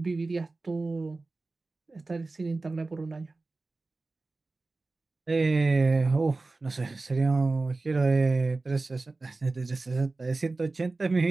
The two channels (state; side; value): quieter; left; 3.4 dB